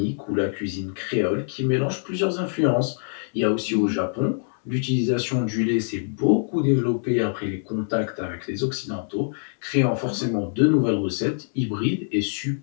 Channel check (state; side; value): silent; right; digital silence